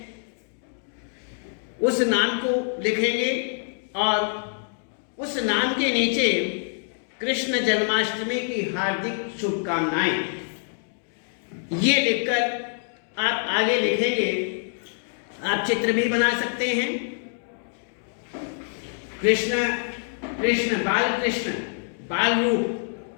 उस नाम को लिखेंगे और उस नाम के नीचे कृष्ण जन्माष्टमी की हार्दिक शुभकामनाएं, ये लिखकर आप आगे लिखेंगे। आप चित्र भी बना सकते हैं, कृष्ण कृष्ण बाल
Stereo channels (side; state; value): right; silent; digital silence